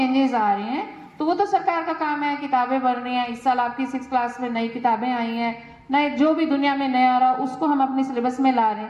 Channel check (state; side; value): identical; both; correlation 1.00